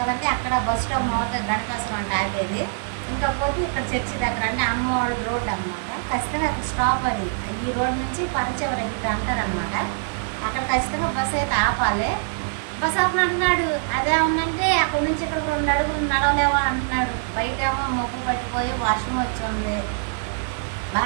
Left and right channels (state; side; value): silent; left; digital silence